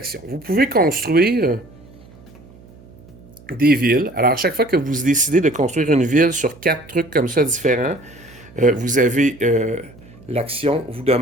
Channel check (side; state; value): right; noise; hum, 23 dB below the sound